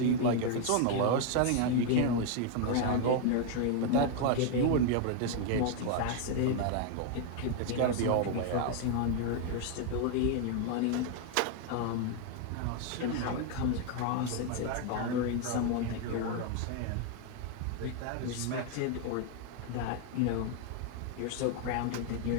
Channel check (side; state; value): both; different; correlation 0.00